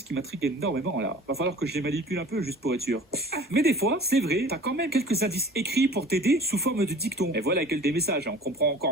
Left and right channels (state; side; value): normal; both; correlation 0.45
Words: qui m'intriguent énormément, là. Va falloir que je les manipule un peu, juste pour être sûr. Mais des fois, c'est vrai, t'as quand même quelques indices écrits pour t'aider sous forme de dicton. Et voilà que des messages, on comprend